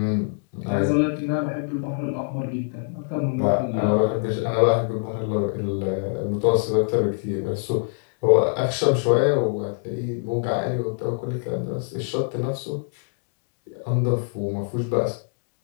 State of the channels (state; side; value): silent; right; digital silence